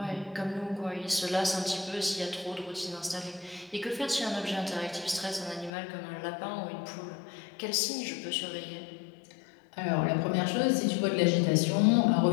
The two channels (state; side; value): drops out; right; at 5.7 s